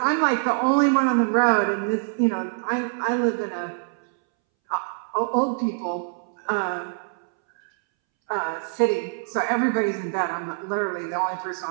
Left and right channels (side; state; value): left; silent; 62 dB below the other